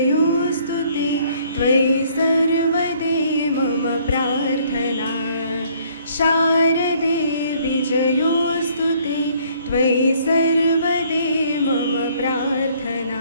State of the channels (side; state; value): both; inverted; correlation -0.61